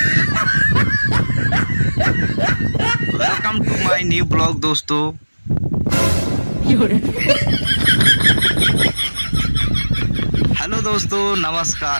Welcome to my new blog दोस्तों। हेलो दोस्तों,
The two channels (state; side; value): inverted; both; correlation -1.00